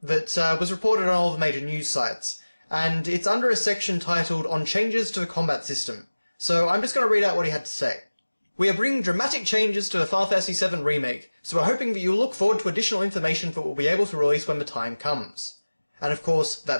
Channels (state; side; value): inverted; both; correlation -1.00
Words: was reported on all the major news sites, and it's under a section titled On Changes to the Combat System. So I'm just going to read out what he had to say. We are bringing dramatic changes to the Final Fantasy VII Remake, so we're hoping that you'll look forward to additional information that we'll be able to release when the time comes. And of course,